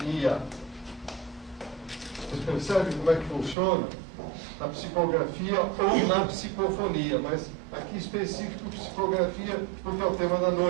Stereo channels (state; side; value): drops out; left; at 3.6 s